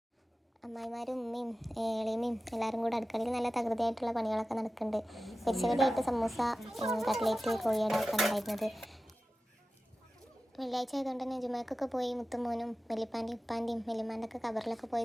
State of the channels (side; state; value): both; normal; correlation 0.95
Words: അമ്മായിമാരും ഉമ്മയും എളിയമ്മയും എല്ലാവരും കൂടെ അടുക്കളയിൽ നല്ല തകൃതിയായിട്ടുള്ള പണികളൊക്കെ നടക്കുന്നുണ്ട്. പൊരിച്ചകടിയായിട്ട് സമൂസ, കട്ട്ലേറ്റ്, കോഴിയട ഒക്കെ ഉണ്ടായിരുന്നത്. വെള്ളിയാഴ്ച ആയതുകൊണ്ട് തന്നെ ജുമാക്കൊക്കെ പോയി മുത്തുമോനും വെല്ലിപ്പാൻ്റെയും ഉപ്പാൻ്റെയും വെല്ലിമാൻ്റെ ഒക്കെ കബറിലൊക്കെ